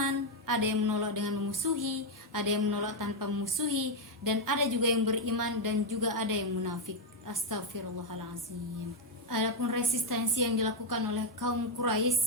ada yang menolak dengan memusuhi, ada yang menolak tanpa memusuhi, dan ada juga yang beriman dan juga ada yang munafik. Astagfirullahaladzim. Adapun resistensi yang dilakukan oleh kaum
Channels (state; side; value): normal; both; correlation 0.02